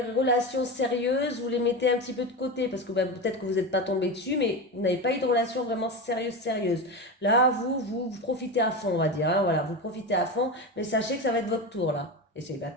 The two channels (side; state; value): both; normal; correlation 0.21